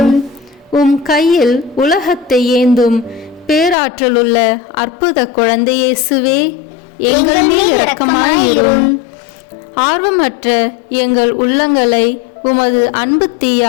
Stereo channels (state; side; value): drops out; right; at 3.8 s